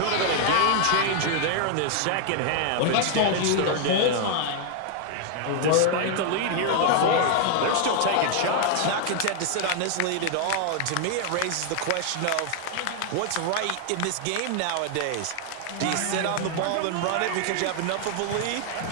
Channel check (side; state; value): both; different; correlation 0.00